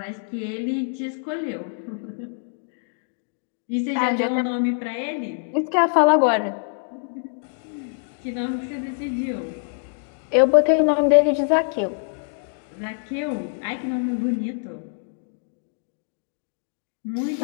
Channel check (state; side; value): silent; right; digital silence